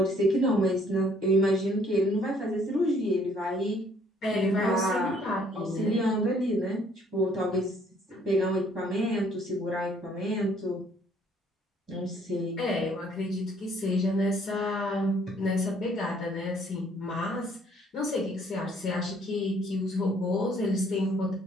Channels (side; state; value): both; normal; correlation 0.62